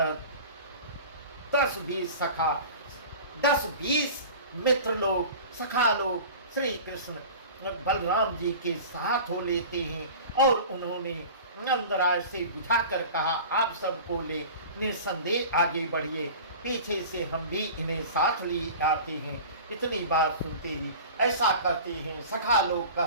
10-20 सखा, 10-20 मित्र लोग, सखा लोग श्री कृष्ण बलराम जी के साथ हो लेते हैं। और उन्होंने नंदराज से बुझाकर कहा आप सबको ले निसंदेह आगे बढ़िए, पीछे से हम भी इन्हें साथ लिए आते हैं। इतनी बात सुनते ही ऐसा कहते हैं, सखा लोग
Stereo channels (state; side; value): inverted; both; correlation -0.38